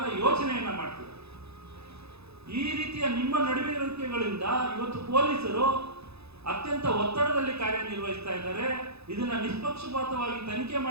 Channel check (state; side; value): late; left; 0.79 ms